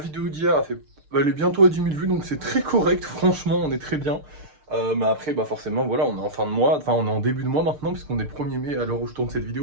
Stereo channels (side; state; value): left; late; 6.6 ms